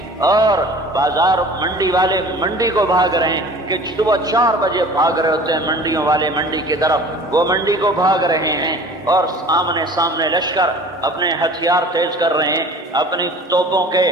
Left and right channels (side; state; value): both; normal; correlation 0.44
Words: اور بازار منڈی والے منڈی کو بھاگ رہے ہیں کہ صبح 4 بجے بھاگ رہے ہوتے ہیں منڈیوں والے منڈی کی طرف، وہ منڈی کو بھاگ رہے ہیں، اور سامنے لشکر اپنے ہتھیار تیز کر رہے ہیں، اپنی توپوں کے